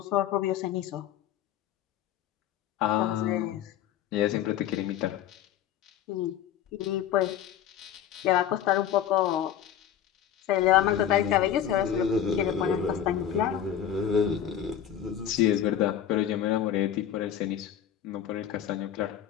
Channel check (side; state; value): right; quieter; 9.9 dB